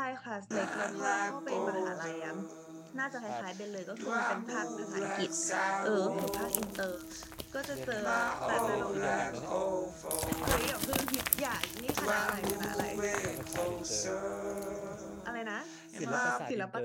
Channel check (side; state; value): both; identical; correlation 1.00